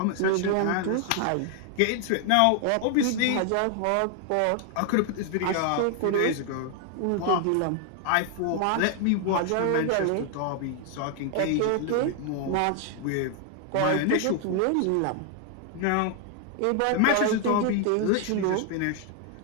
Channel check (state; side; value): different; both; correlation 0.00